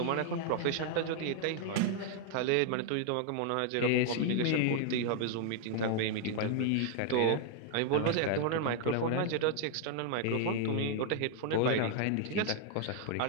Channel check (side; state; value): both; different; correlation 0.00